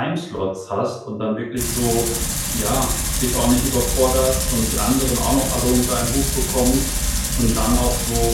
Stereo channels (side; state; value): both; identical; correlation 1.00